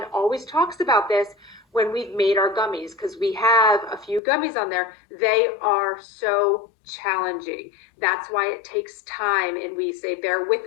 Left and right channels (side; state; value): right; drops out; at 4.2 s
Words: always talks about this when we've made our gummies, because we have a few gummies on there. They are so challenging. That's why it takes time, and we say bear